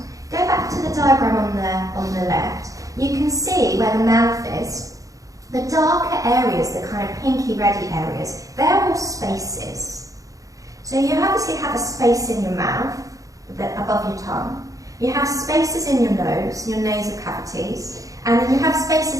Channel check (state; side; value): late; left; 0.16 ms